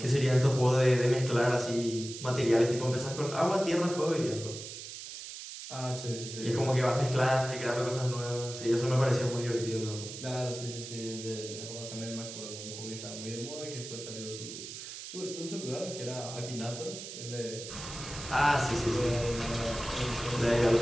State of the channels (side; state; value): right; noise; hiss, 10 dB below the sound